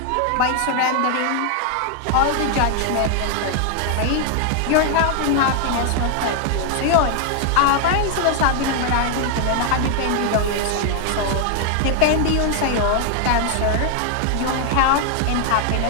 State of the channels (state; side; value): different; both; correlation 0.00